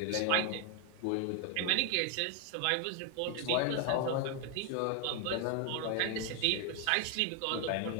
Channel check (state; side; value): different; both; correlation 0.01